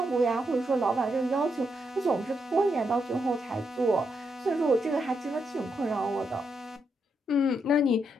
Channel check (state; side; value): normal; both; correlation 0.80